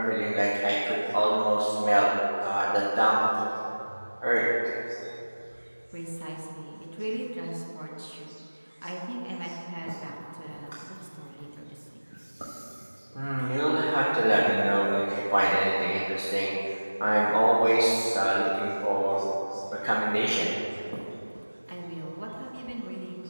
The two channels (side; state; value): both; inverted; correlation -1.00